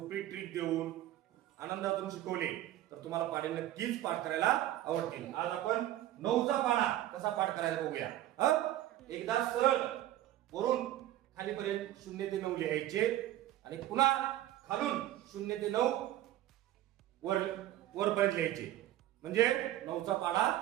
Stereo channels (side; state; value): left; quieter; 13.8 dB